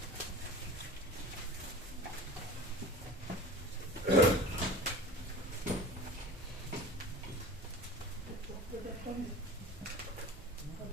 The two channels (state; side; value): normal; both; correlation 0.36